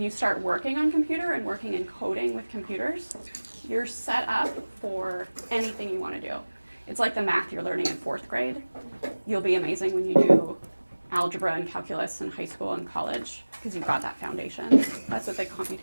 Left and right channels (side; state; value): both; inverted; correlation -1.00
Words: you start working on computer and working in coding with computers, you're set up for anything you want to do. It's like the math you're learning in 4th grade. You'll be amazing when you do algebra and calculus in high school and college because you've got that foundation. That's what the